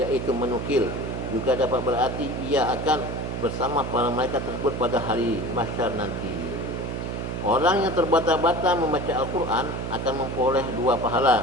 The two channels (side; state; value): right; noise; hum, 4 dB below the sound